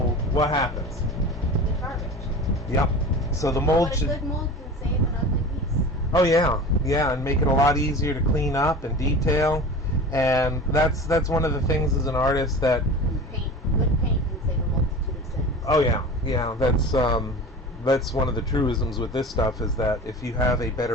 what happens? It's garbage. Yep. So the mold But a good mold can save an ugly piece. Oh yeah, and make it a lot easier to clean up and detail. And that's one of the things as an artist that Good paint can save a multitude of sins. Oh yeah, that's one of the truisms with this stuff, is that if you have a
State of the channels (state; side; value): normal; both; correlation 0.35